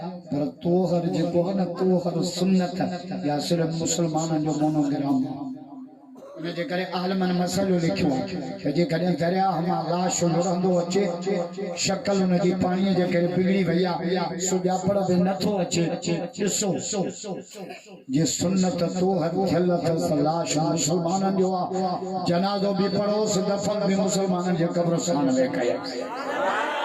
पर तोहर जेको आहे न तोहर सुन्नत या सिर्फ़ु मुस्लमाननि जो मोनोग्राम उन जे करे आलमनि मसइलो लिखियो त जेकॾहिं दरियाह मां लाश लुढ़ंदो अचे शक्ल उन जी पाणीअ जे करे बिगड़ी वई आहे सुञापण बि नथो अचे ॾिसो जे सुन्नत तोहर थियल अथसि लाश मुस्लमाननि जो आहे जनाज़ो बि पढ़ोसि दफ़न बि मुस्लमाननि जे क़ब्रस्तान में कयसि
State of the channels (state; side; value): identical; both; correlation 1.00